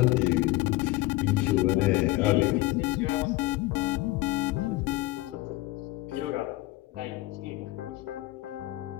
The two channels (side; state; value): right; quieter; 19.2 dB